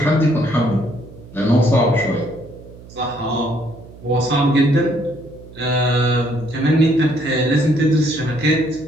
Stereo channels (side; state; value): right; noise; hum, 19 dB below the sound